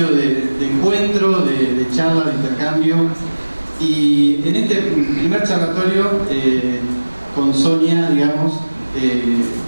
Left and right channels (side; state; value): both; inverted; correlation -1.00